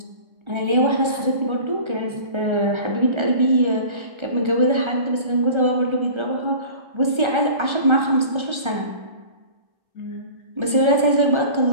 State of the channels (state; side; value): late; left; 1.3 ms